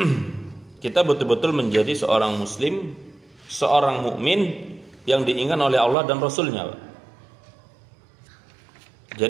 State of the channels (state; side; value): drops out; left; at 6.0 s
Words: kita betul-betul menjadi seorang muslim, seorang mukmin yang diinginkan oleh Allah dan Rasulnya.